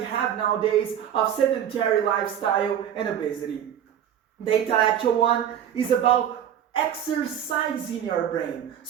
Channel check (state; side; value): quieter; left; 9.7 dB